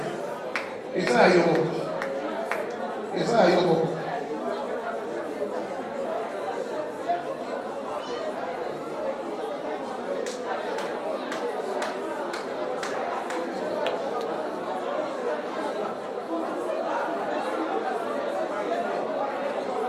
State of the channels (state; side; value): identical; both; correlation 1.00